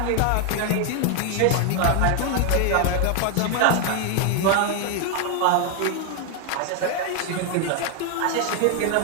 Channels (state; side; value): different; both; correlation 0.00